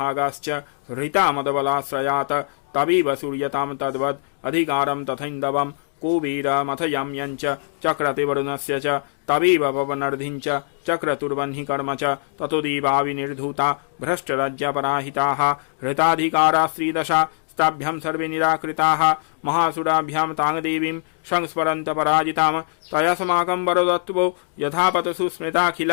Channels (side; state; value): right; silent; digital silence